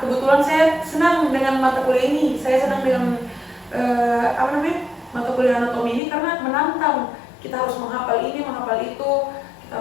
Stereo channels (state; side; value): drops out; right; at 6.0 s